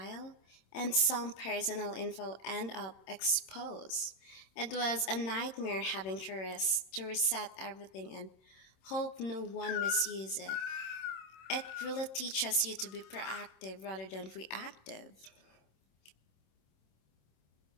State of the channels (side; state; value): right; late; 26 ms